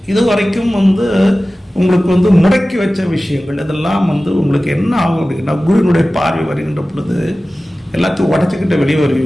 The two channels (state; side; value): normal; both; correlation 0.96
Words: இதுவரைக்கும் வந்து உங்களுக்கு வந்து முடக்கி வச்ச விஷயங்கள், இதெல்லாம் வந்து உங்களுக்கு என்ன ஆகும் அப்படின்னா, குருவினுடைய பார்வை வருகின்ற பொழுது எல்லாத்தையும் உடச்சிக்கிட்டு வெளியே